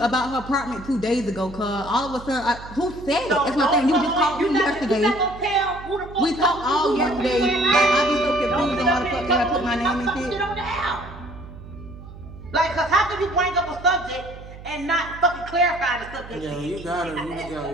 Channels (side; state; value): right; noise; hum, 15 dB below the sound